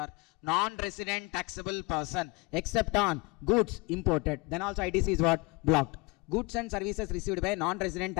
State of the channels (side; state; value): right; quieter; 26.8 dB